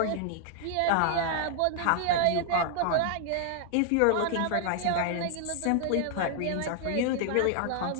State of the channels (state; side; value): different; both; correlation 0.00